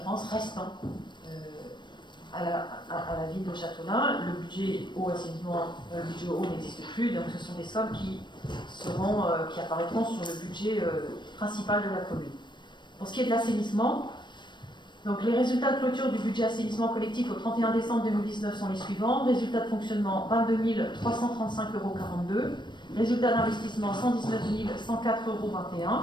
restant à la ville de Châteaulin. Le budget eau assainissement, le budget eau n'existe plus, donc ce sont des sommes qui apparaîtront sur le budget principal de la commune. Pour ce qui est de l'assainissement, donc les résultats de clôture du budget assainissement collectif au 31 décembre 2019 sont les suivants. Résultat de fonctionnement 22 335,42 €. Résultat d'investissement 119 104,21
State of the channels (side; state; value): right; late; 0.22 ms